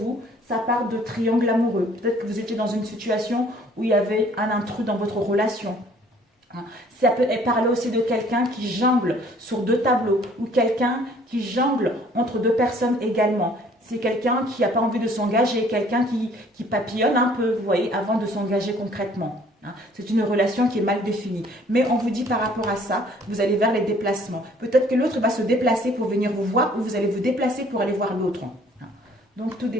ça part de triangle amoureux. Peut-être que vous étiez dans une situation où il y avait un intrus dans votre relation. Ça peut parler aussi de quelqu'un qui jongle sur deux tableaux ou quelqu'un qui jongle entre deux personnes également. C'est quelqu'un qui n'a pas envie de s'engager, quelqu'un qui papillonne un peu, vous voyez, avant de s'engager concrètement. C'est une relation qui est mal définie. Mais on vous dit par rapport à ça, vous allez vers les déplacements. Peut-être que l'autre va se déplacer pour venir vous voir ou vous allez vous déplacer pour aller voir l'autre. Donc tout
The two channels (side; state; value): both; normal; correlation 0.57